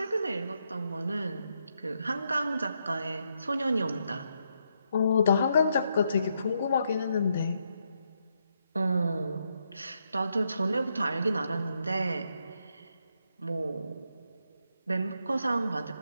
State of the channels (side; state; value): both; inverted; correlation -0.79